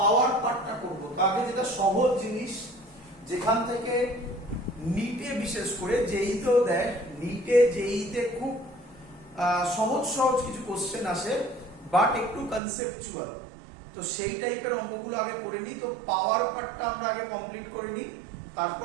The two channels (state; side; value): drops out; left; at 12.6 s